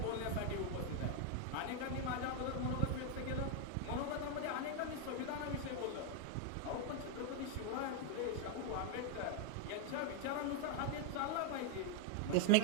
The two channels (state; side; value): different; both; correlation 0.00